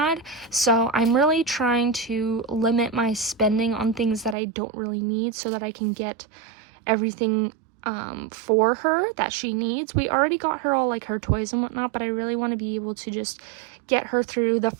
So I'm really trying to limit my spending on things that I don't really need so that I can get everything for her that she needs. We already got her all like her toys and whatnot, but I really want to be able to just get her through the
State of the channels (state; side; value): drops out; left; at 4.4 s